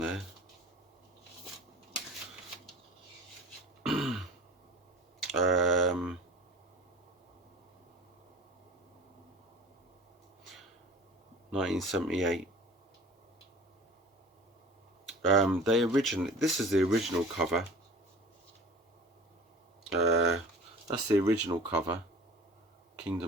1978. This is the original cover. That's the original cover,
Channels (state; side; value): normal; both; correlation 0.42